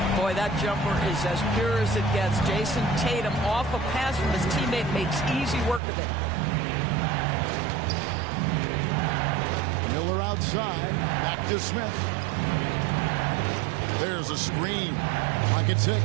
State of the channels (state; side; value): drops out; left; at 5.8 s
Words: Boy, that jumper is as pure as it gets. Jason Tatum off a pass from his teammate makes easy work of it. Miller outside. Back to Smith. There's a screen. Pocket 6.